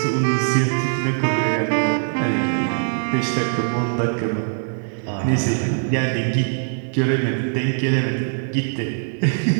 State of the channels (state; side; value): silent; left; digital silence